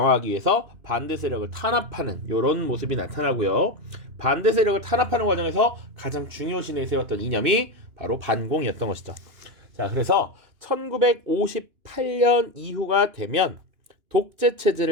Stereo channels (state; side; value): late; left; 2.9 ms